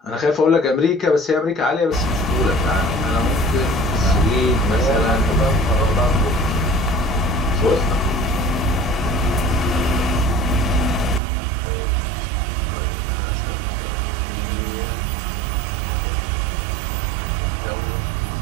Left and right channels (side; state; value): left; drops out; at 11.2 s